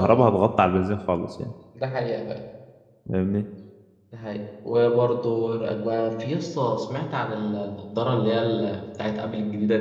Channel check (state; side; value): identical; both; correlation 1.00